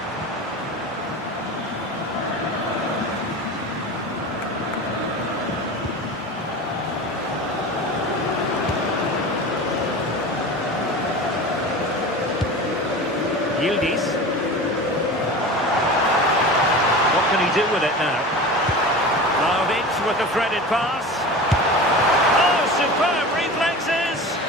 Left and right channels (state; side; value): normal; both; correlation 0.32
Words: Yildiz. What can he do with it now? Vlahovic with the threaded pass. Oh, superb reflexes!